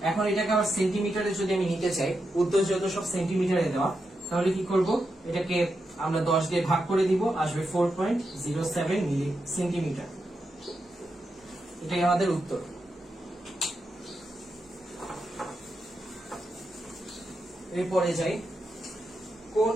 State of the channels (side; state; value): both; normal; correlation 0.86